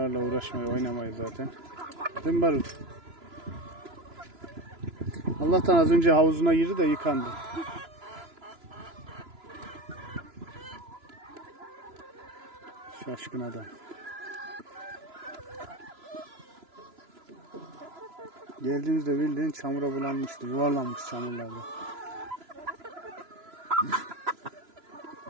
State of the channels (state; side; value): late; left; 3.0 ms